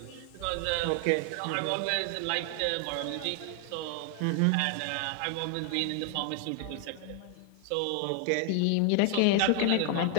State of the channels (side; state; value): both; different; correlation 0.00